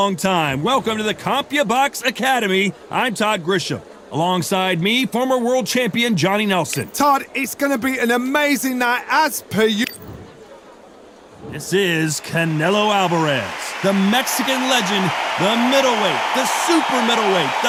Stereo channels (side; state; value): both; identical; correlation 1.00